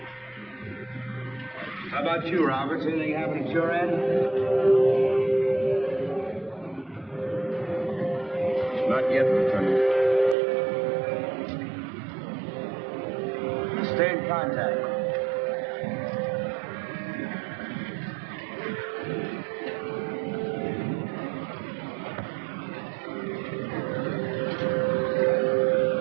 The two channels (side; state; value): left; drops out; at 10.4 s